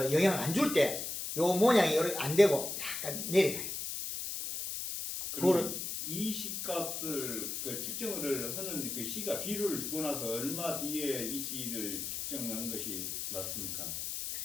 영향을 안 줄 때 요 모양이 이렇게 안 되고 약간 내려가요. 그러면 이 시값을 그 측정을 하는 그 시가 비료를 주고 나서 얼마 뒤에 이 시를 측정하는 것이 맞습니까?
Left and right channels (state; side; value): noise; left; hiss, 4 dB below the sound